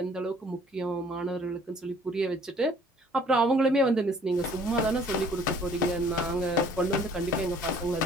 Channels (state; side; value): normal; both; correlation 0.56